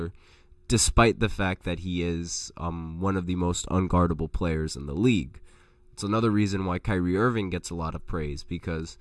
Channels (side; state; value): both; identical; correlation 1.00